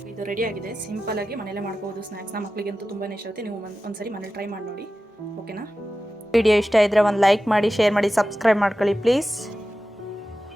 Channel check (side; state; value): both; normal; correlation 0.94